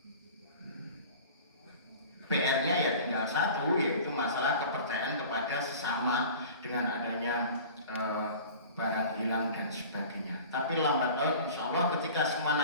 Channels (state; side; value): inverted; both; correlation -0.41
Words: PR-nya ya tinggal satu, yaitu masalah kepercayaan kepada sesama dengan adanya barang hilang dan sebagainya. Tapi lambat laun insya Allah ketika semua